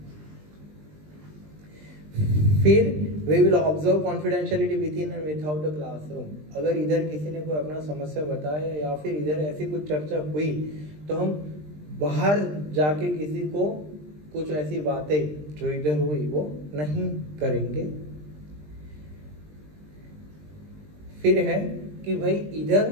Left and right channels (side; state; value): left; late; 20 ms